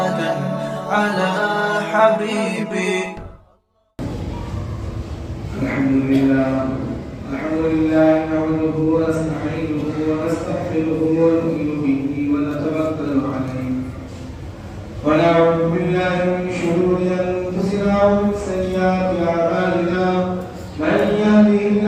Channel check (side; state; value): both; identical; correlation 1.00